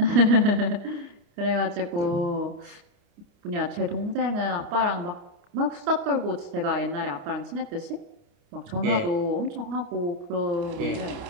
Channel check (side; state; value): left; late; 29 ms